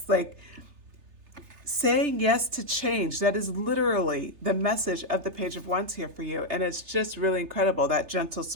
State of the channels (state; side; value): late; left; 3.2 ms